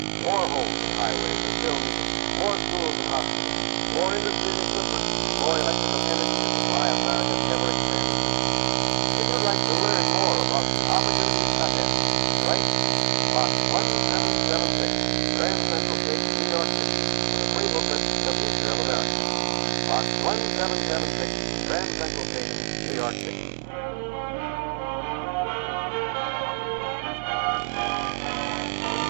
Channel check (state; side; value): silent; left; digital silence